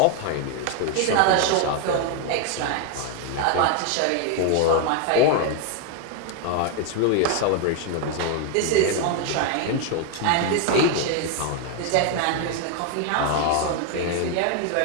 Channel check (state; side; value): different; both; correlation 0.01